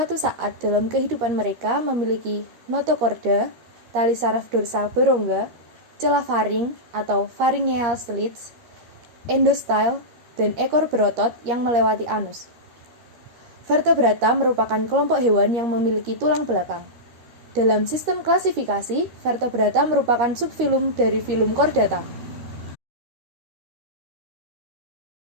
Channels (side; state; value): left; late; 13 ms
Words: saat dalam kehidupan mereka memiliki notochorda, tali saraf dorsal berongga, celah faring atau pharyngeal slits, endostyle, dan ekor berotot yang melewati anus. Vertebrata merupakan kelompok hewan yang memiliki tulang belakang. Dalam sistem klasifikasi, vertebrata merupakan subfilum dari filum chordata.